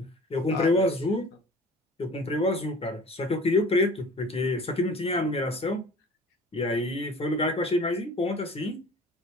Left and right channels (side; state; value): both; normal; correlation 0.45